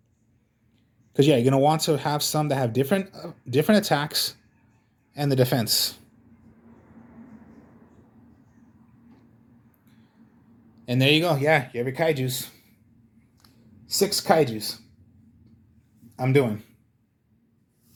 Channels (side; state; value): both; identical; correlation 1.00